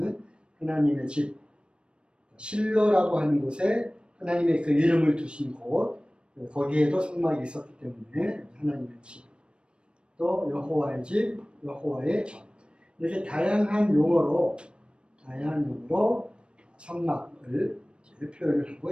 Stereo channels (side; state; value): left; late; 0.056 ms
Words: 하나님의 집, 실로라고 하는 곳에 하나님의 그 이름을 두신 곳, 거기에도 성막이 있었기 때문에 하나님의 집, 또 여호와의 집, 여호와의 전, 이렇게 다양한 용어로 성막을 표현을 하고